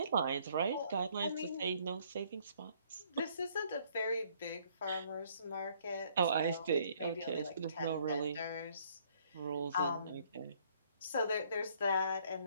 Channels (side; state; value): both; inverted; correlation -0.63